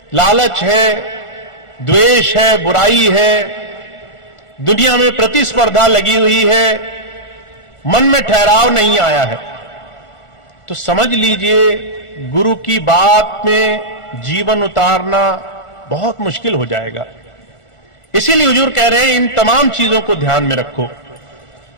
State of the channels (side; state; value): right; late; 1.4 ms